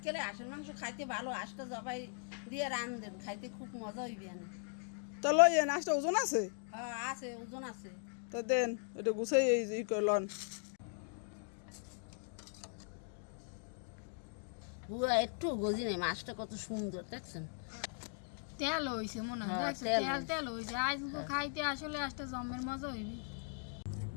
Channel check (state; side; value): silent; right; 52 dB below the other